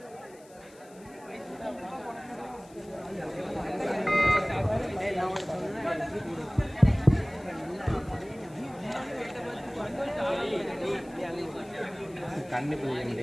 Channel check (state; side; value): noise; left; hiss, 26 dB below the sound